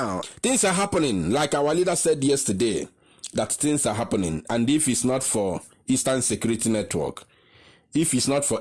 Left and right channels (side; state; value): both; identical; correlation 1.00